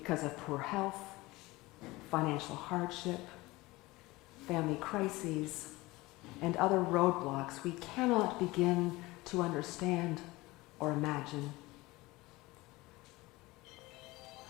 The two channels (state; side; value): quieter; right; 20.9 dB